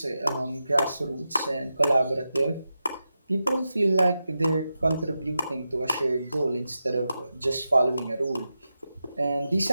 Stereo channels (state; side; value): inverted; both; correlation -0.90